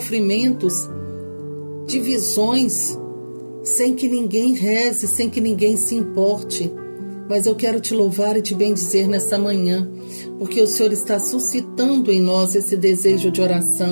divisões, sem que ninguém reze, sem que ninguém se importe. Mas eu quero te louvar e te bendizer nessa manhã, porque o Senhor está suscitando em nós esse desejo de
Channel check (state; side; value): inverted; both; correlation -1.00